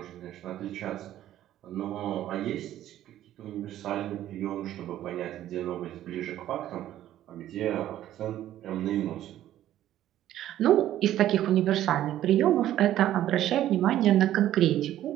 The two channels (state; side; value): quieter; left; 12.7 dB